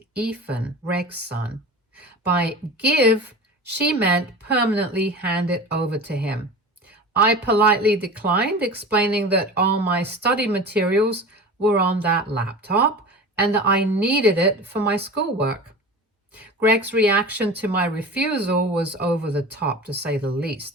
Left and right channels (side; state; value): both; normal; correlation 0.34